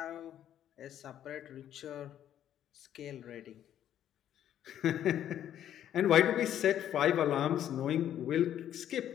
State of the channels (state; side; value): quieter; right; 10.8 dB